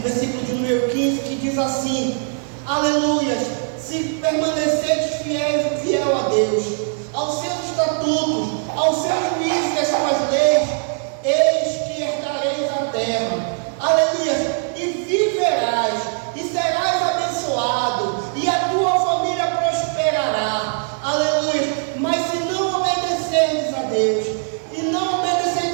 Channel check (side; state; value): left; silent; 64 dB below the other